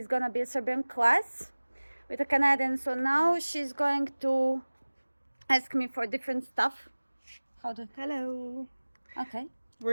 gonna be a Serbian class with a Canadian. So now she's going to ask me for different stuff. Hello. Okay. We're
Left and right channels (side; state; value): both; inverted; correlation -1.00